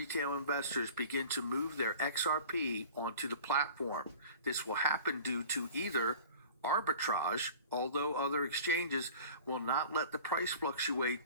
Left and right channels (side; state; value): both; inverted; correlation -0.42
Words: investors begin to move their XRP onto the platform. This will happen due to either arbitrage, although other exchanges will not let the price